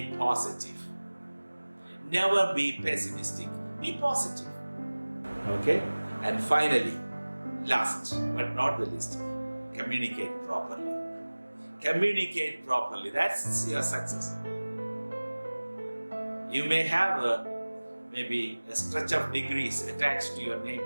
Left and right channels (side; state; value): both; inverted; correlation -1.00